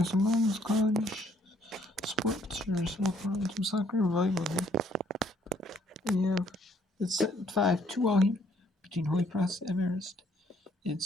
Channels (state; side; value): normal; both; correlation 0.66